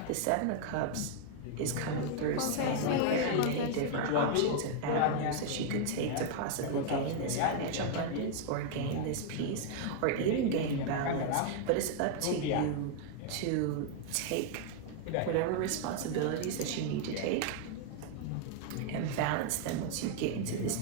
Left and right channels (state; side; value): different; both; correlation 0.00